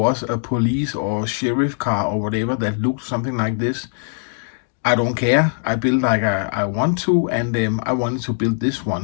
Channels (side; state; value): right; silent; digital silence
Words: a police or sheriff car or whatever that looked something like this. I don't care. I build like I want to, and I wanted to build this